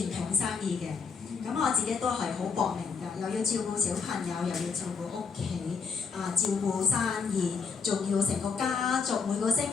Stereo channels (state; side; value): quieter; right; 5.5 dB